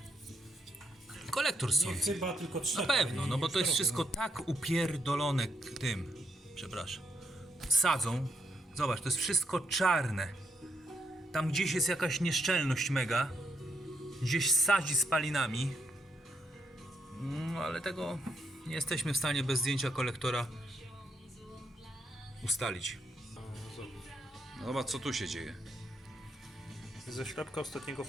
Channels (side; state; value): both; normal; correlation 0.77